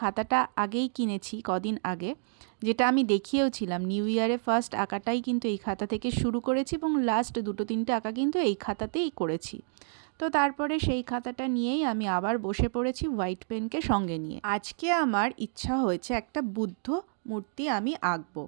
আগেই কিনেছি কদিন আগে, যেটা আমি দেখিয়েওছিলাম। নিউ ইয়ারে ফার্স্ট আঁকাটাই কিন্তু এই খাতা থেকে শুরু করেছি এবং লাস্ট ২-৩টে আঁকা কিন্তু এই খাতাতেই করেছি। তো তারপরে সেই খাতাটা নিয়েই আমি আবার বসে পড়েছি হোয়াইট পেনকে সঙ্গে নিয়ে। আজকে আমার ইচ্ছা হয়েছে একটা বুদ্ধ মূর্তি আমি আঁকবো।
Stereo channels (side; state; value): left; silent; digital silence